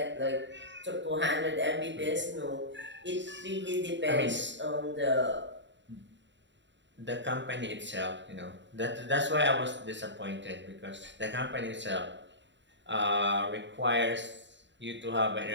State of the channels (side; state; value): left; late; 0.53 ms